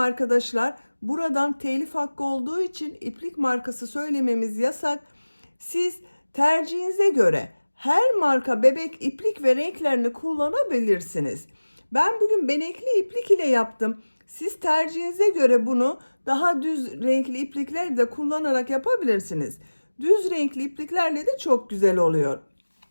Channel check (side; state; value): both; inverted; correlation -1.00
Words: Buradan telif hakkı olduğu için iplik markası söylememiz yasak. Siz tercihinize göre her marka bebek iplik ve renklerini kullanabilirsiniz. Ben bugün benekli iplik ile yaptım. Siz tercihinize göre bunu daha düz renkli iplikler de kullanarak yapabilirsiniz. Düz renkli ipliklerle de çok güzel oluyor.